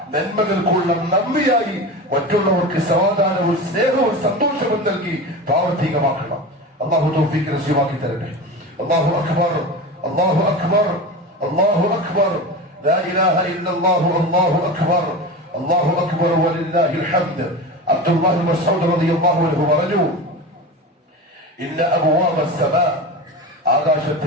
നന്മകൾക്കുള്ള നന്ദിയായി മറ്റുള്ളവർക്ക് സമാധാനവും സ്നേഹവും സന്തോഷവും നൽകി പ്രാവർത്തികമാക്കണം. അല്ലാഹു തൗഫീഖ് നസീബാക്കി തരട്ടെ. അല്ലാഹു അക്ബർ, അല്ലാഹു അക്ബർ, അല്ലാഹു അക്ബർ, ലാ ഇലാഹ ഇല്ലല്ലാഹു, അല്ലാഹു അക്ബർ, അല്ലാഹു അക്ബർ വലില്ലാഹിൽ ഹംദ്. അബ്ദുല്ലാഹി ഇബ്നു മസ്ഊദ് റളിയല്ലാഹു അൻഹു പറഞ്ഞു, ഇന്ന അബ്വാബ അസ്സമാ,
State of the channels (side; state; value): both; normal; correlation 0.27